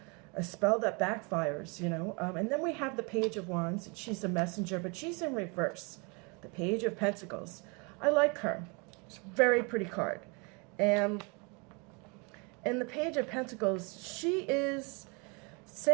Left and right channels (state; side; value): quieter; left; 31.3 dB